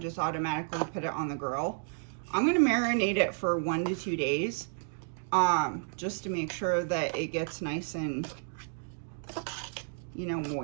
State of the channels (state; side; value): silent; left; digital silence